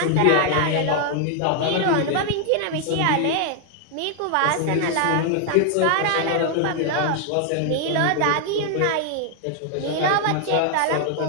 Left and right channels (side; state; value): both; different; correlation 0.00